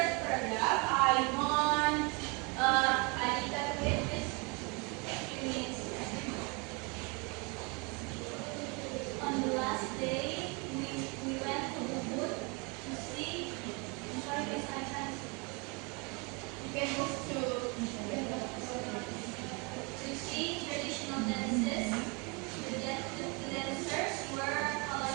paragraph, I want Anita to read this. On the last day, we went to Ubud to see. I'm sorry, guys, I can't. You can move To see traditional dances. The dancers wear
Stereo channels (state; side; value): quieter; left; 30.6 dB